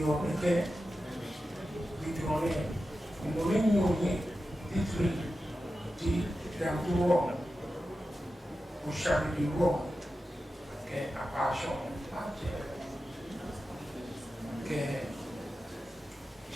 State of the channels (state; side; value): normal; both; correlation 0.92